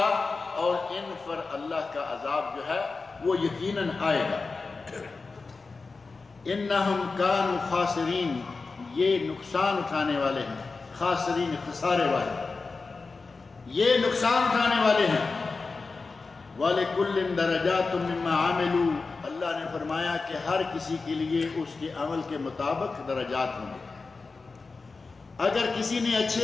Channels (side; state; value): right; quieter; 4.1 dB